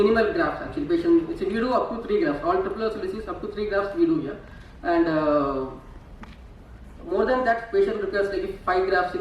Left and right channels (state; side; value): identical; both; correlation 1.00